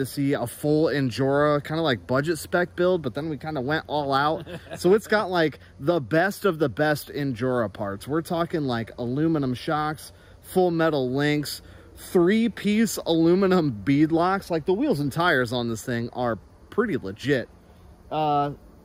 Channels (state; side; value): identical; both; correlation 1.00